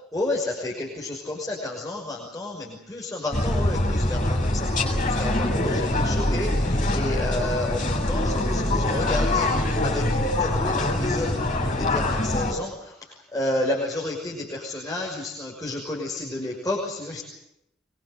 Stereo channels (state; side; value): normal; both; correlation 0.60